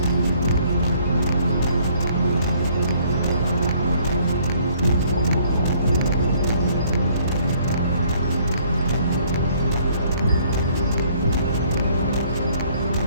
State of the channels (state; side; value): inverted; both; correlation -0.61